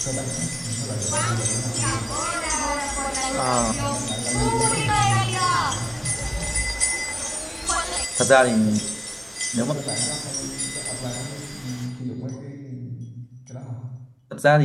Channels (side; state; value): both; identical; correlation 1.00